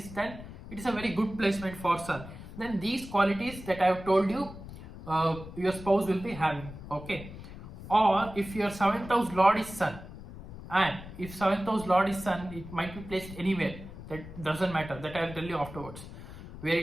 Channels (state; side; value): noise; left; rumble, 13 dB below the sound